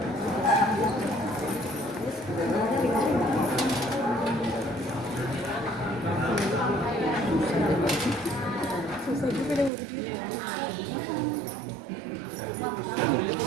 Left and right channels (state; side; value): drops out; left; at 9.7 s